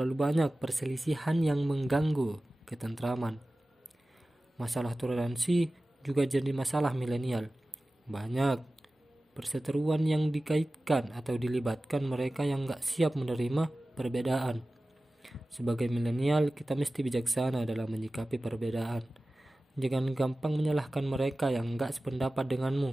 banyak perselisihan yang mengganggu ketentraman. Masalah toleransi juga jadi masalah milenial. Banyak perseteruan yang dikaitkan atau dilibatkan mereka yang gak siap menerima perbedaan. Sebagai milenial, kita mesti bijaksana dalam menyikapi perbedaan. Jangan gampang menyalahkan mereka yang enggak sependapat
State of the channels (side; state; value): both; normal; correlation 0.96